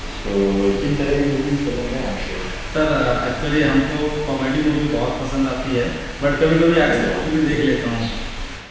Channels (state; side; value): identical; both; correlation 1.00